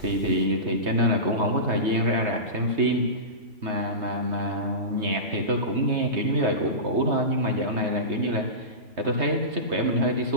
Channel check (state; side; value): late; left; 3.2 ms